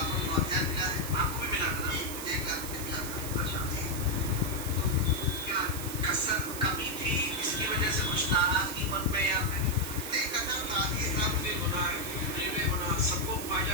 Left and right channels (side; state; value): right; noise; hiss, 7 dB below the sound